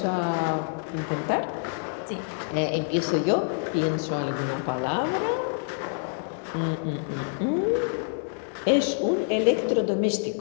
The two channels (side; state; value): right; silent; 60 dB below the other